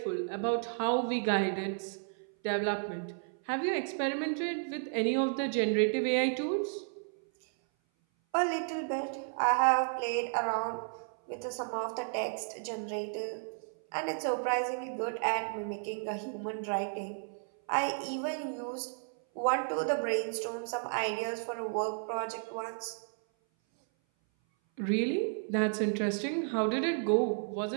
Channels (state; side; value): silent; left; 56 dB below the other